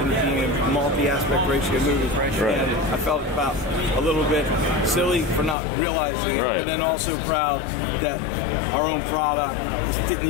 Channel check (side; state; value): right; drops out; at 5.6 s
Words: it being a multi-aspect ratio movie. And I felt about a little bit silly for not realizing it, but then also proud that our own product didn't